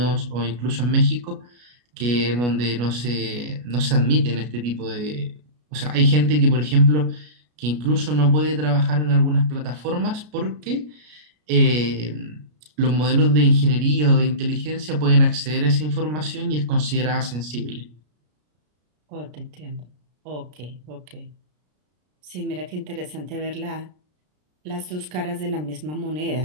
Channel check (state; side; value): late; left; 33 ms